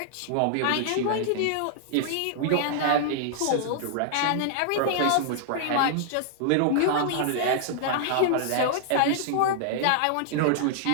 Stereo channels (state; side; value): different; both; correlation -0.01